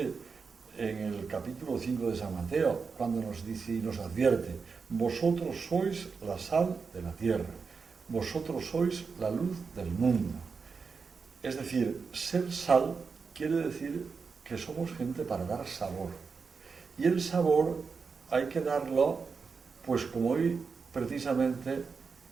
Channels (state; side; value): quieter; left; 5.2 dB